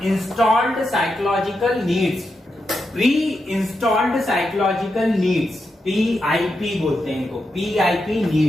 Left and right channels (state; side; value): normal; both; correlation 0.86